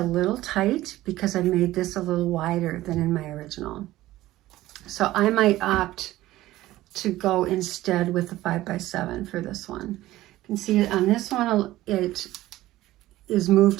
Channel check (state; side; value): quieter; left; 16.0 dB